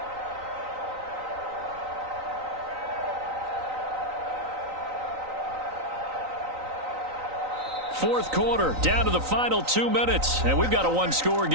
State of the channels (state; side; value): late; left; 3.9 ms